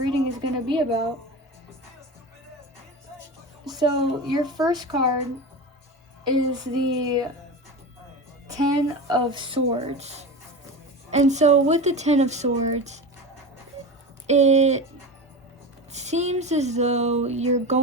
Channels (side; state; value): both; normal; correlation 0.26